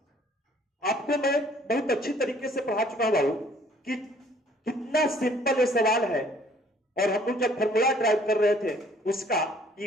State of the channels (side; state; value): both; normal; correlation 0.59